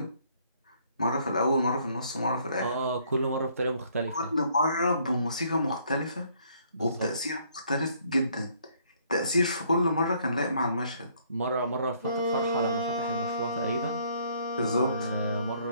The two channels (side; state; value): both; inverted; correlation -0.65